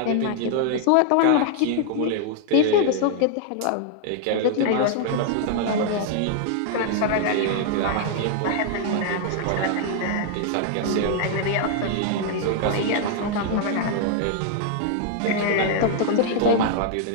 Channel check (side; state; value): both; different; correlation 0.00